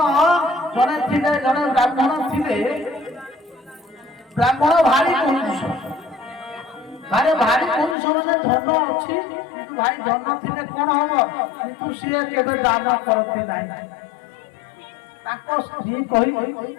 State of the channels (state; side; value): drops out; right; at 8.0 s